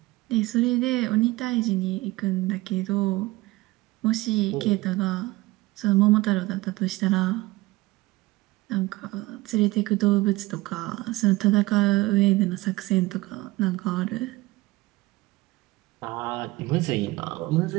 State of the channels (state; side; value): quieter; left; 20.1 dB